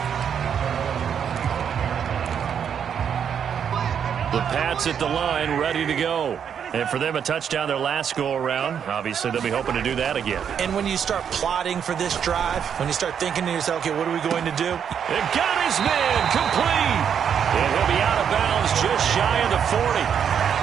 The Pats at the line, ready to go. And for them, a touchdown their last go-around. Obviously, they'll be hoping to do that again. And when you start plotting for this drive, when you start thinking to yourself, okay, what are we going to do? It got his man complete. And he'll be out of bounds just shy of the 40.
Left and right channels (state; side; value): quieter; left; 8.0 dB